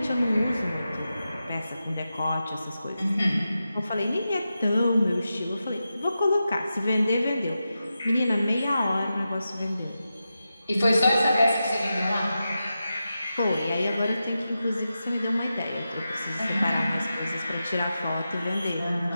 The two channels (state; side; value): inverted; both; correlation -0.91